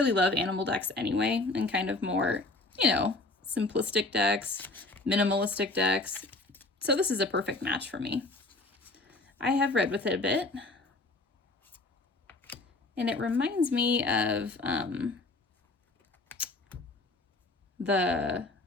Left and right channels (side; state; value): right; quieter; 3.0 dB